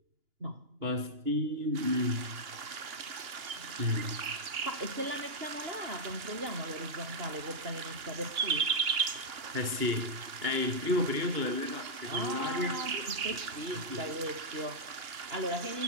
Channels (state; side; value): late; left; 2.9 ms